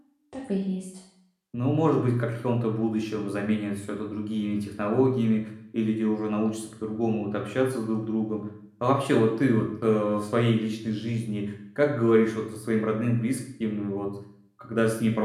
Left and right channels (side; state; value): both; identical; correlation 1.00